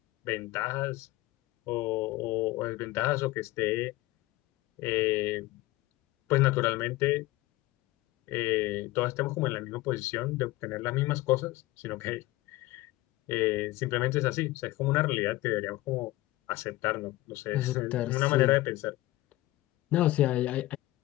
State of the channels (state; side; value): quieter; right; 18.3 dB